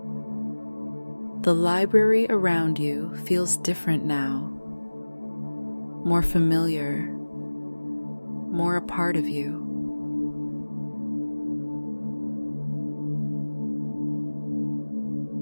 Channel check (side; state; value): both; inverted; correlation -1.00